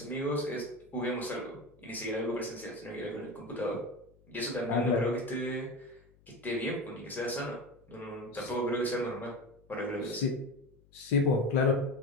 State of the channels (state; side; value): noise; left; hum, 28 dB below the sound